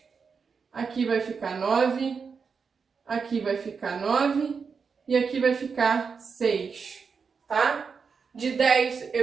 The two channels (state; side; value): quieter; left; 5.6 dB